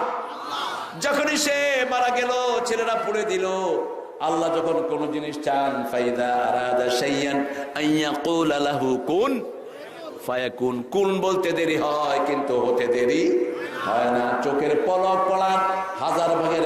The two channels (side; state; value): both; identical; correlation 1.00